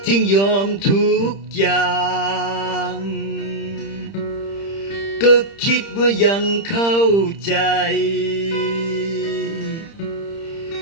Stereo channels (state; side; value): late; right; 30 ms